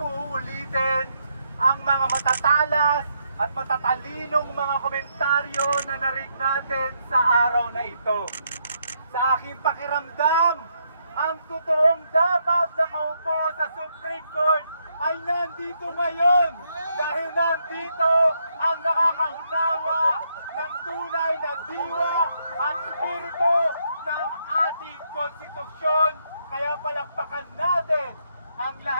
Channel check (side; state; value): both; inverted; correlation -0.76